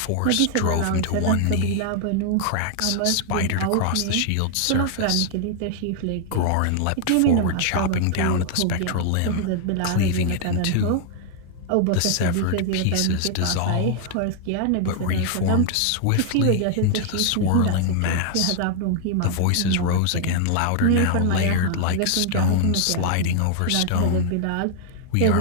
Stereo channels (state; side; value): different; both; correlation 0.00